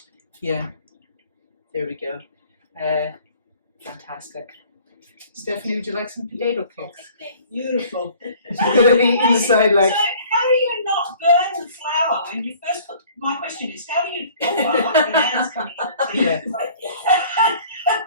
yeah, there we go. Fantastic. Stephanie, would you like some potato cakes? Beautiful. Inside, like. So how do you not burn the flour when you first put? My question is, how do you? The hands coming in. Yeah.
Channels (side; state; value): both; inverted; correlation -0.52